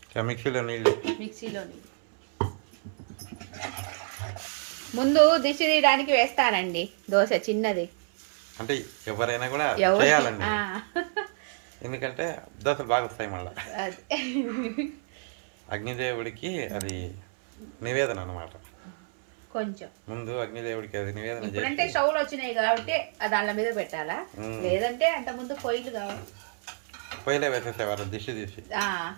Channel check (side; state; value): left; silent; 59 dB below the other